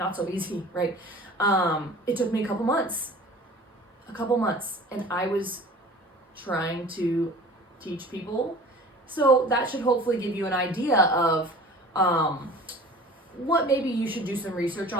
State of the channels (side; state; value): both; normal; correlation 0.43